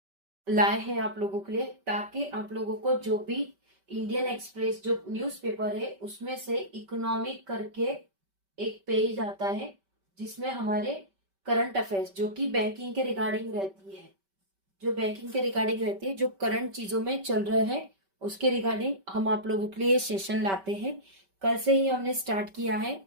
लाए हैं आप लोगों के लिए, ताकि आप लोगों को जो भी इंडियन एक्सप्रेस जो न्यूज़पेपर है उसमें से इकोनॉमिक करके एक पेज आता है, जिसमें हमारे करंट अफेयर्स जो कि बैंकिंग के रिगार्डिंग रहती है, जो करंट चीजों में चल रहे हैं उसके रिगार्डिंग हम आप लोगों के लिए सेशन लाते हैं। कल से ही हमने स्टार्ट किया है।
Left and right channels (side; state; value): left; late; 5.2 ms